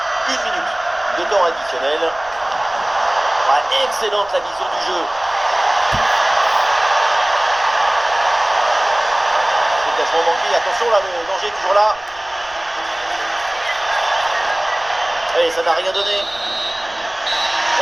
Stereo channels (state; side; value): noise; right; rumble, 26 dB below the sound